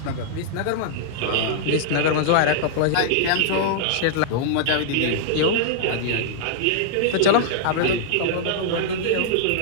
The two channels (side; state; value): both; different; correlation -0.01